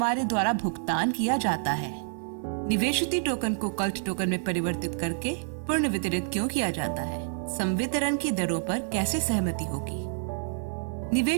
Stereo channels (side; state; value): left; silent; 59 dB below the other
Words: द्वारा भुगतान किया जाता है। निवेशित टोकन को कल्ट टोकन में परिवर्तित करके पूर्ण वितरित क्यों किया जाता है? संवितरण की दरों पर कैसे सहमति होगी?